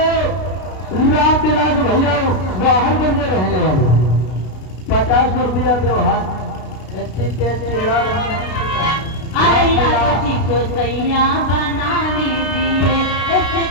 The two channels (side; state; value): right; late; 32 ms